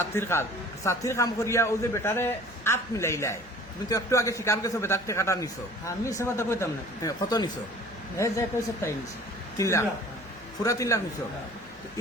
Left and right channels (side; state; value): both; normal; correlation 0.48